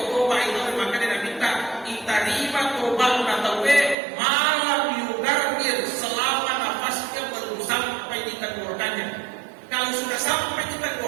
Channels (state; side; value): drops out; left; at 4.0 s